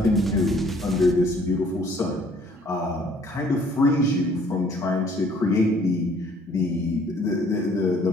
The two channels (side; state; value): both; normal; correlation 0.59